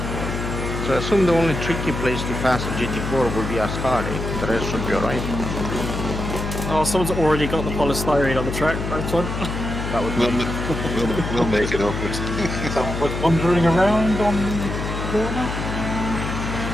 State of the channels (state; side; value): noise; left; hum, 4 dB below the sound